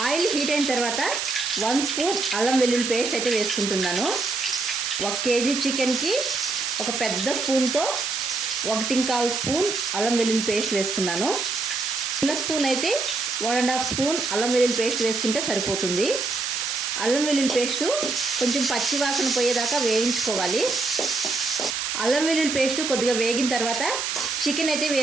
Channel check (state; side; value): noise; right; hiss, 2 dB below the sound